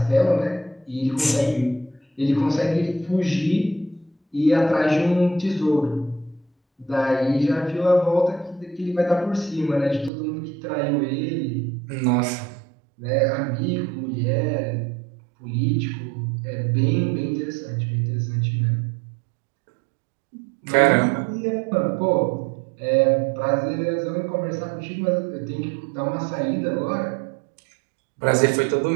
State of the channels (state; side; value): drops out; left; at 10.1 s